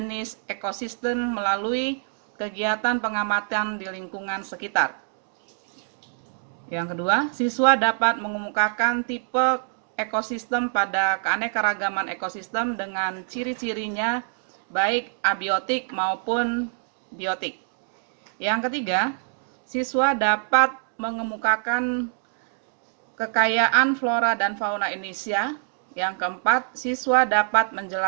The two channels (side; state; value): left; silent; digital silence